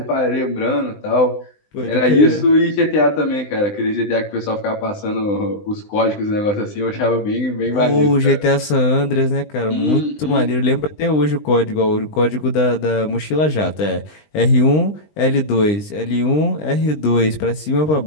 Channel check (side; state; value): right; late; 20 ms